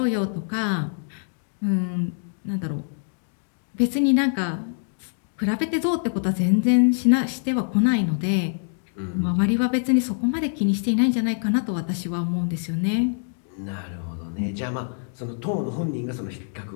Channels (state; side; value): silent; right; digital silence